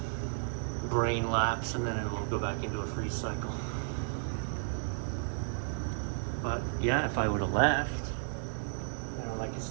brain lapse, and then it'll go back into a freeze cycle. But yeah, if I would have left, I could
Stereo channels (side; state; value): left; silent; digital silence